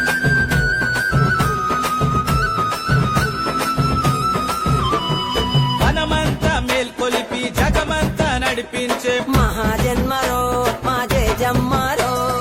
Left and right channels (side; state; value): both; identical; correlation 1.00